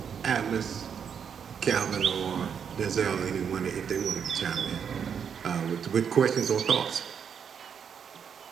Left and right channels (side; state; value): left; quieter; 7.4 dB